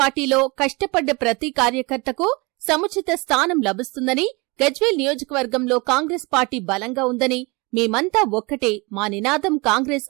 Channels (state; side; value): quieter; left; 27.0 dB